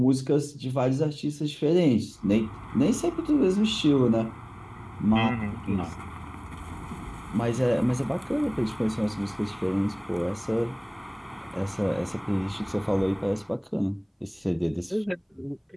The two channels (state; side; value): identical; both; correlation 1.00